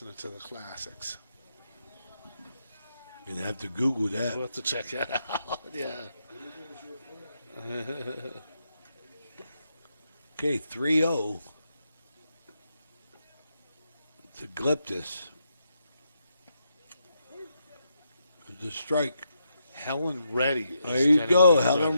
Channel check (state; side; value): inverted; both; correlation -0.81